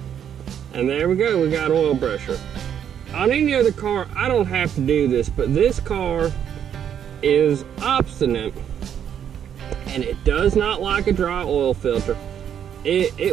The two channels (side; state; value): left; quieter; 9.0 dB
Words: And there we go, we got oil pressure. On any other car, I don't have to do this, but this car is obstinate and it does not like a dry oil filter.